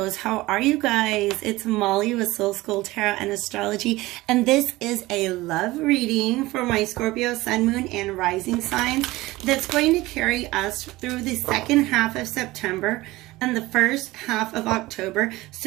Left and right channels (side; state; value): left; quieter; 19.2 dB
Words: How are you guys? It's Molly with Soul School Tarot and Astrology, and this is a love reading for my Scorpio, Sun, Moon, and Rising signs that's going to carry us through the second half of September and the first half of October.